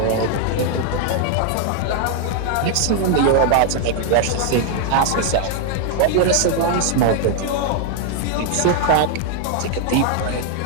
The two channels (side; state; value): both; different; correlation 0.00